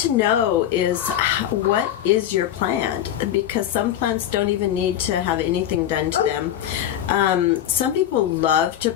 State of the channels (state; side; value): quieter; right; 11.2 dB